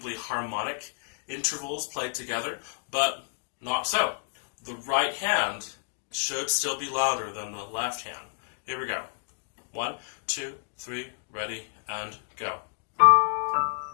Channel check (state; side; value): silent; right; digital silence